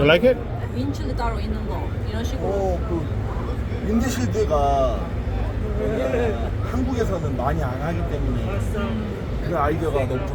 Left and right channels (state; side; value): identical; both; correlation 1.00